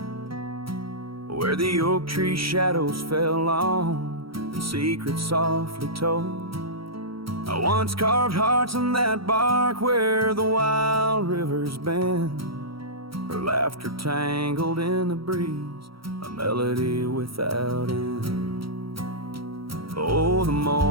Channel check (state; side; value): late; left; 0.75 ms